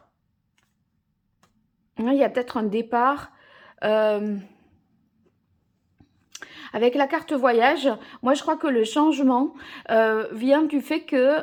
Là, il y a peut-être un départ. Avec la carte voyage, moi je crois que le changement vient du fait que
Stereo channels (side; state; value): both; identical; correlation 1.00